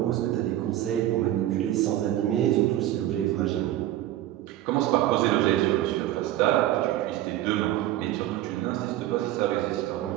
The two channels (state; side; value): quieter; left; 13.8 dB